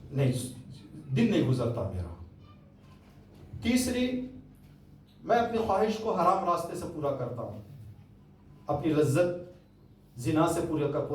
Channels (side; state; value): both; identical; correlation 1.00